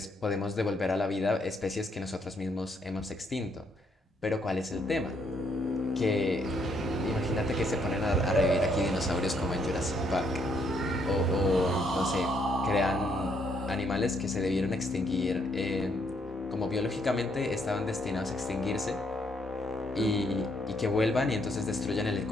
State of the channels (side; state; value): both; normal; correlation 0.72